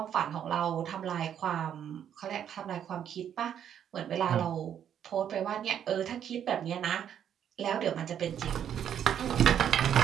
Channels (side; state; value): left; quieter; 9.4 dB